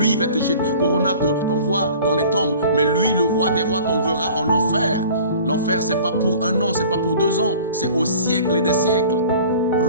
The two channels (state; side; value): inverted; both; correlation -0.45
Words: il va te jeter. Corona t'envoie dans les tombes, mais lui, le roi des rois, t'enverra en enfer. L'enfer, c'est pas pour 1 an, c'est pas pour 2 ans, c'est au siècle et des siècles.